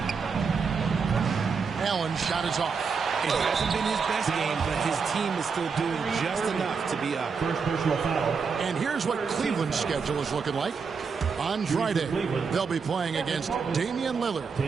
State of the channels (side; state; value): left; quieter; 5.5 dB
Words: Allen shot is off. It hasn't been his best game, but his team is still doing just enough to be up. First personal foul. And here's what Cleveland's schedule is looking like. On Friday, they'll be playing against Damian Lillard